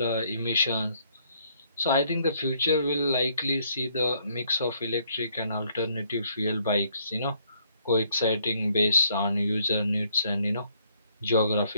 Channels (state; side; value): inverted; both; correlation -0.67